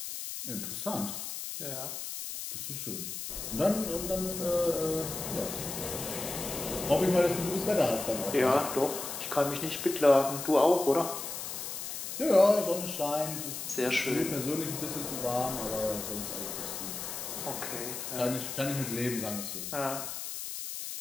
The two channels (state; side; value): noise; left; hiss, 6 dB below the sound